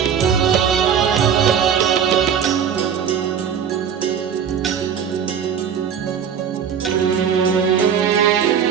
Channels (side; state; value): left; quieter; 7.9 dB